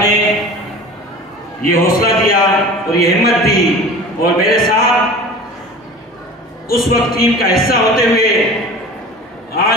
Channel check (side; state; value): both; normal; correlation 0.38